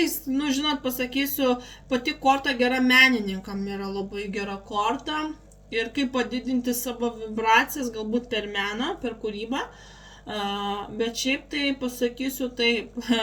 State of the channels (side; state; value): both; identical; correlation 1.00